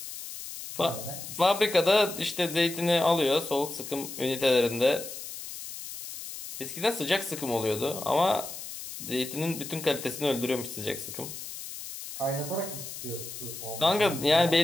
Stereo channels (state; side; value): noise; left; hiss, 10 dB below the sound